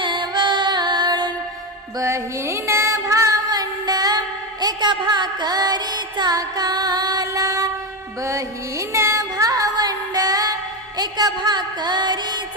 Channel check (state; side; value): normal; both; correlation 0.13